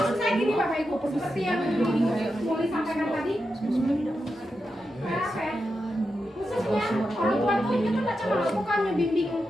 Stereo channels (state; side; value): normal; both; correlation 0.88